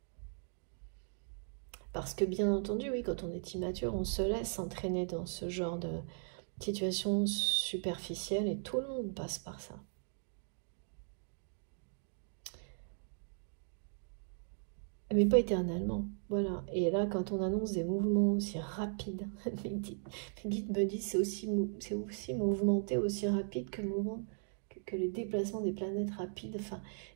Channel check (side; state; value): left; silent; digital silence